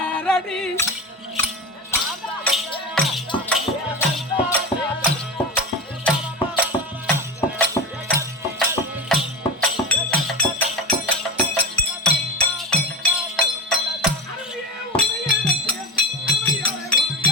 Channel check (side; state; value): both; normal; correlation 0.23